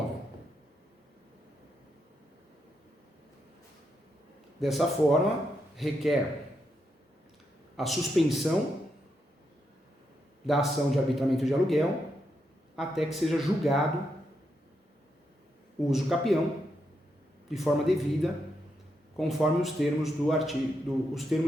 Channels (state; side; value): normal; both; correlation 0.82